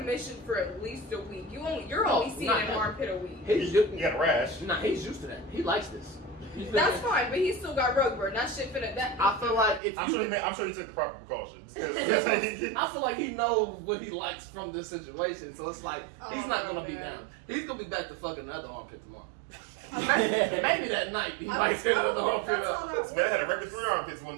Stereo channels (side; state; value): left; drops out; at 9.8 s